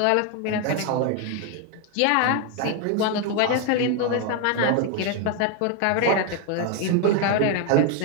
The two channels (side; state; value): both; different; correlation 0.01